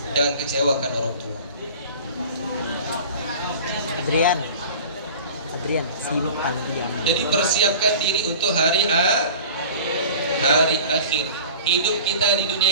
Jangan kecewakan orang tua. Adrian simpan dia. Jadi persiapkan diri untuk hari akhir. Hidup kita di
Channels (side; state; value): both; inverted; correlation -0.40